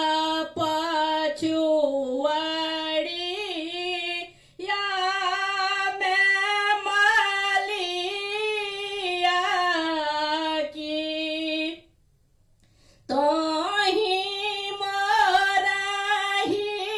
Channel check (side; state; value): both; identical; correlation 1.00